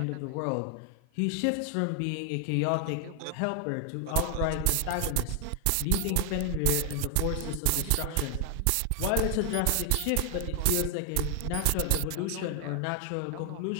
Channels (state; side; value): different; both; correlation 0.00